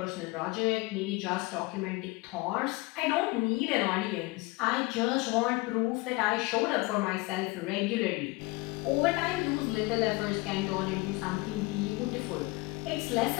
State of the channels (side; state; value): right; quieter; 23.9 dB